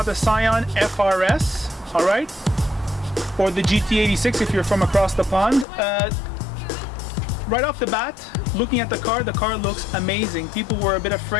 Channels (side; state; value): right; drops out; at 5.7 s